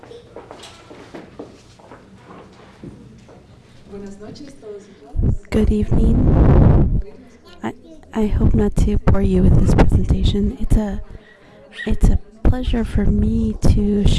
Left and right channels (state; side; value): identical; both; correlation 1.00